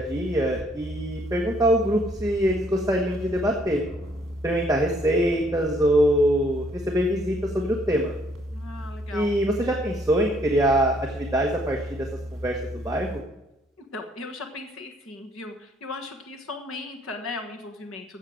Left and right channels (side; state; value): both; normal; correlation 0.66